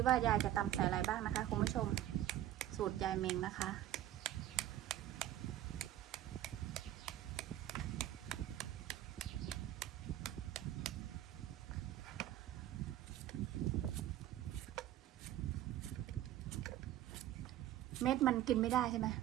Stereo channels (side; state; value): left; quieter; 12.9 dB